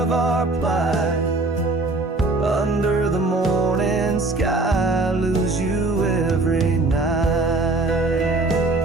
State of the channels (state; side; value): quieter; left; 3.1 dB